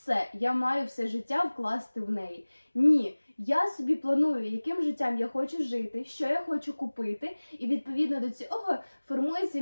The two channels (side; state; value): both; inverted; correlation -1.00